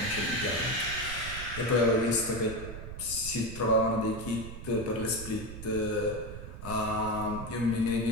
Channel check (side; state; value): right; noise; rumble, 10 dB below the sound